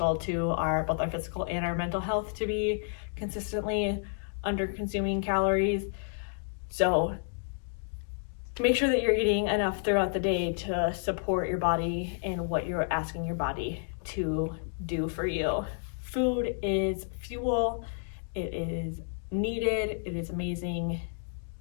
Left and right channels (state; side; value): silent; right; digital silence